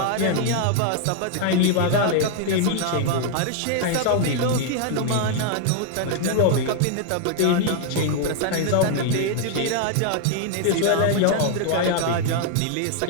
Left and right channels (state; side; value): different; both; correlation 0.00